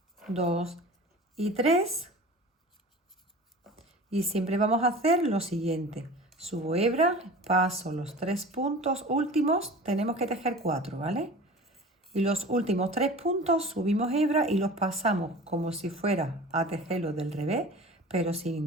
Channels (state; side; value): normal; both; correlation 0.39